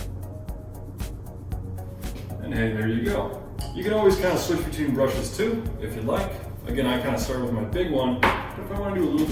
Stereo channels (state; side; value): identical; both; correlation 1.00